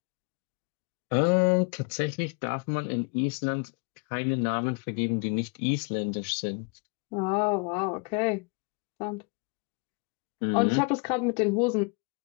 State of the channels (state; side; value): quieter; right; 33.6 dB